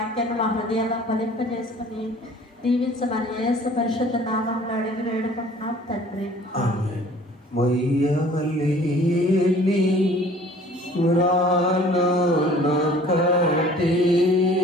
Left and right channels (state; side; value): normal; both; correlation 0.51